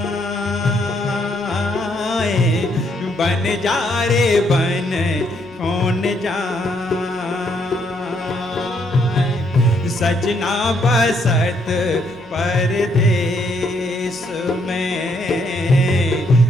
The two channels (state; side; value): normal; both; correlation 0.72